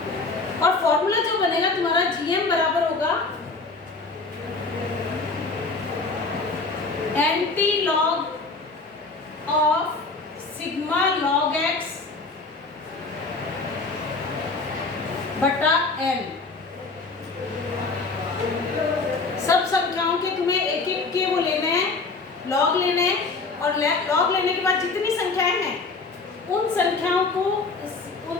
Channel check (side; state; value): right; quieter; 3.9 dB